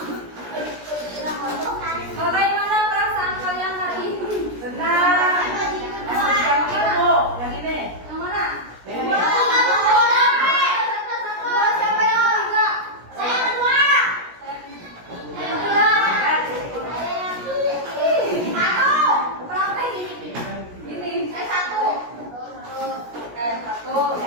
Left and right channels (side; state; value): left; late; 17 ms